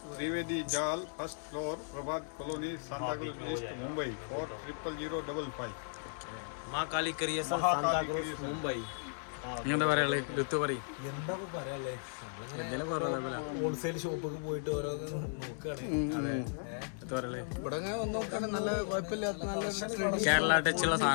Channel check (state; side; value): silent; right; digital silence